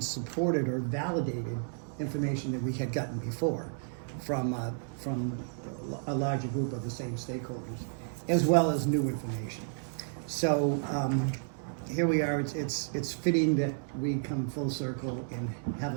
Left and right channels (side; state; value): left; silent; digital silence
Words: or validated information that we had gotten before from a larger group of the same stakeholders, as well as new information. So here we are. It's fitting that we come full circle and have